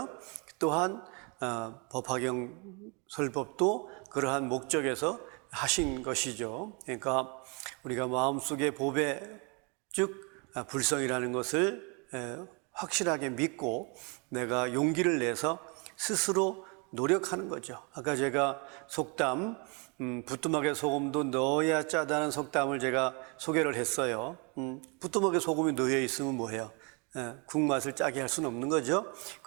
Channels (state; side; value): quieter; left; 33.0 dB